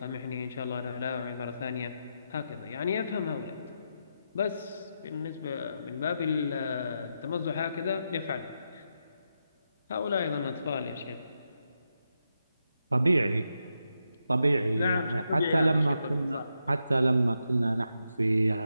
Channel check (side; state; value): both; inverted; correlation -0.85